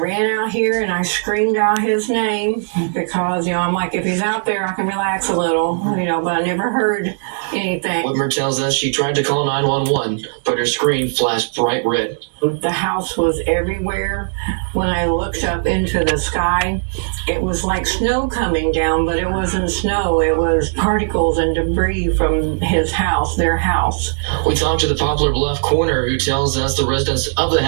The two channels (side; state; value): left; silent; digital silence